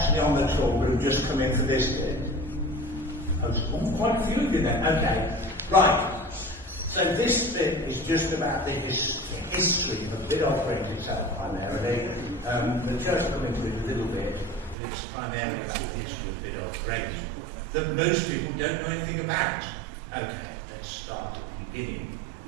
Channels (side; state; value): left; drops out; at 14.8 s